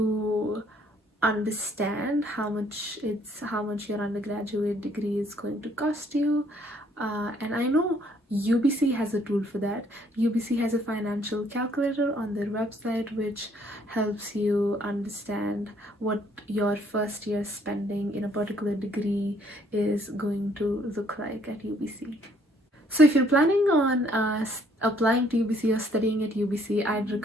understand how much your undergraduate degree is going to cost you, and I know UBC has a tool for that. UBC has a financial calculator on their website which helps you understand what your first year spending in a particular degree is going to look like at UBC. So if you're planning on applying to UBC or studying at UBC, I'd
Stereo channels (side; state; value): both; normal; correlation 0.64